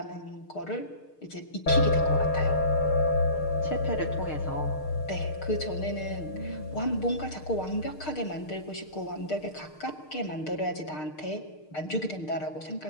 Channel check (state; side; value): late; right; 6.6 ms